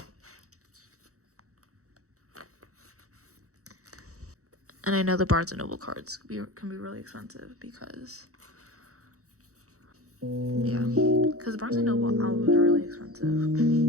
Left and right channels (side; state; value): left; late; 0.65 ms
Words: And I know the Barnes & Noble cards can be really expensive because, yeah, because the Barnes & Noble albums are really expensive.